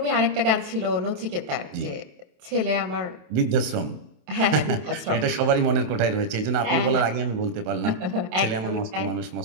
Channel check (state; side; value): late; left; 27 ms